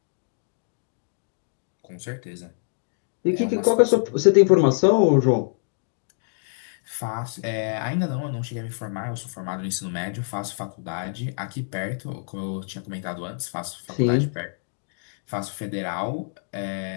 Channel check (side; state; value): right; silent; digital silence